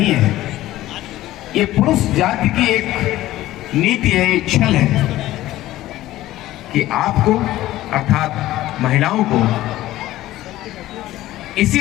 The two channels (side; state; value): right; quieter; 15.4 dB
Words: है। ये पुरुष जाति की एक नीति है, एक छल है कि आपको अर्थात महिलाओं को इसी